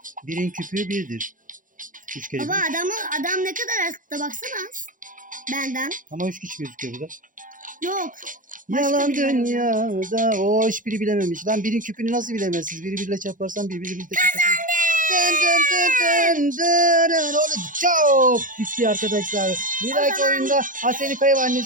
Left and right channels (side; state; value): left; late; 0.39 ms